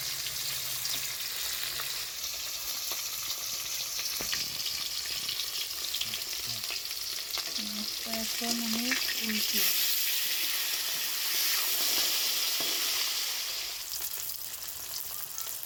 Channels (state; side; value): identical; both; correlation 1.00